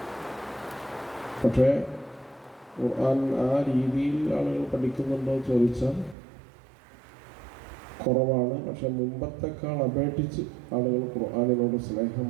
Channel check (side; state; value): left; drops out; at 6.2 s